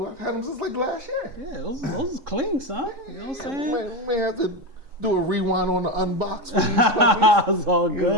I've had them since like last year. Yeah, those is clean, son. You know what I'm saying? You may have to do a rewind on the unboxing. It's all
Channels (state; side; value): late; left; 3.7 ms